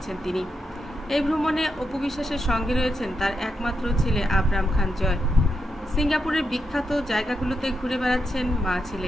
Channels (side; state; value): both; normal; correlation 0.84